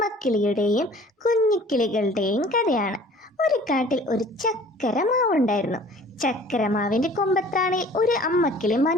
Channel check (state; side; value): normal; both; correlation 0.49